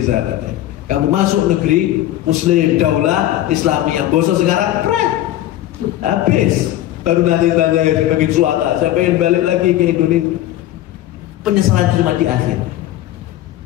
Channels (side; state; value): right; quieter; 13.8 dB